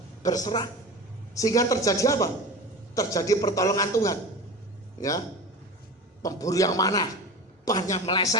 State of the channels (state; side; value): normal; both; correlation 0.31